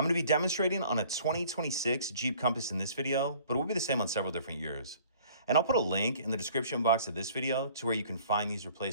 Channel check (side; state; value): both; inverted; correlation -0.53